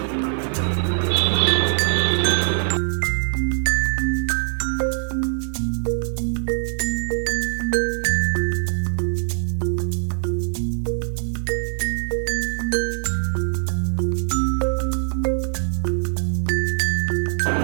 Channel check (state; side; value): silent; left; 64 dB below the other